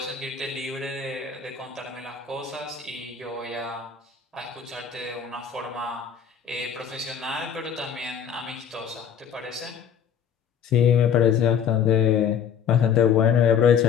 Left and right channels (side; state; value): right; quieter; 7.9 dB